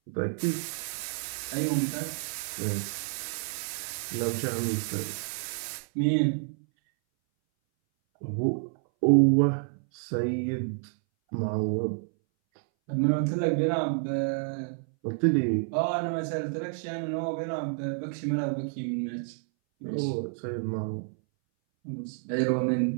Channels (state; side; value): silent; left; 58 dB below the other